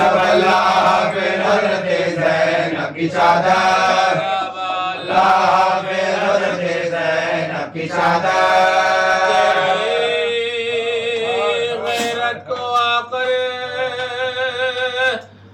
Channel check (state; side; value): identical; both; correlation 1.00